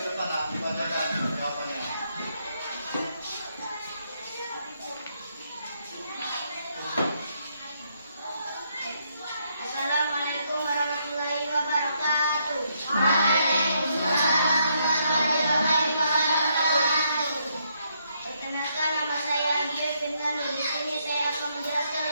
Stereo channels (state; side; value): inverted; both; correlation -0.75